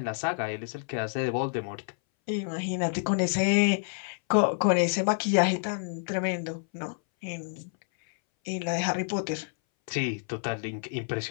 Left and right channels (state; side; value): silent; right; 59 dB below the other